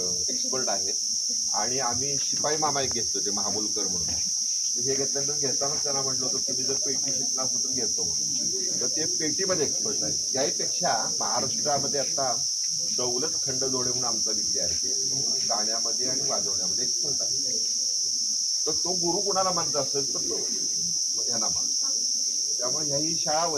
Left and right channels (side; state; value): right; noise; hiss, 16 dB below the sound